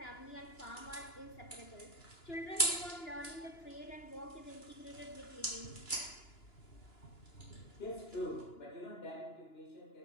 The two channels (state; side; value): late; right; 2.9 ms